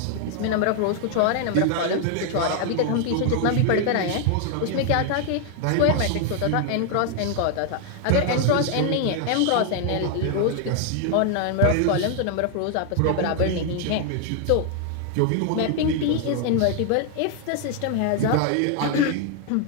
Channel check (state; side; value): different; both; correlation 0.00